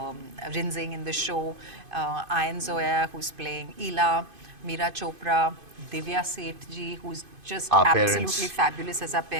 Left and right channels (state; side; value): late; left; 2.5 ms